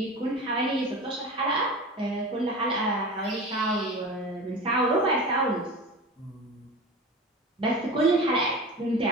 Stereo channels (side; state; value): both; normal; correlation 0.32